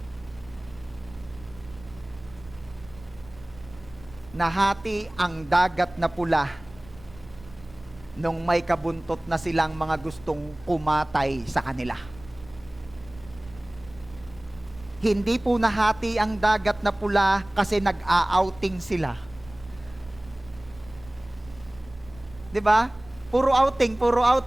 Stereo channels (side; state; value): right; noise; rumble, 21 dB below the sound